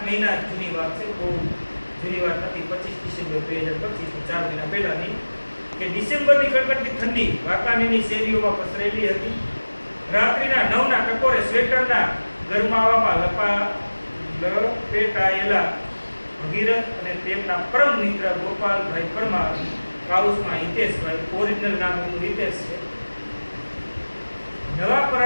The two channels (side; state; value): both; inverted; correlation -1.00